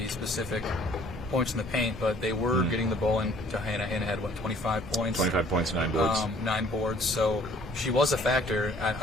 specific points in the paint, but they were getting the ball into Hannah. Hannah had, 25 points? 25 points, 9 boards. 9 boards, so she was a factor.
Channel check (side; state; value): both; normal; correlation 0.57